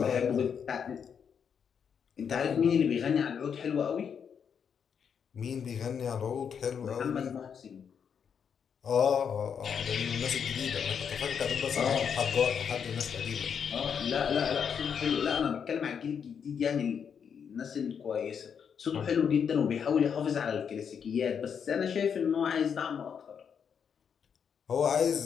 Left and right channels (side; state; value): right; quieter; 7.2 dB